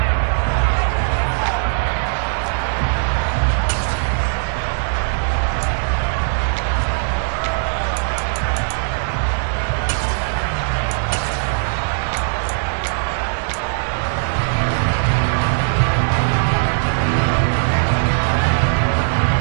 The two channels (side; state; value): left; silent; digital silence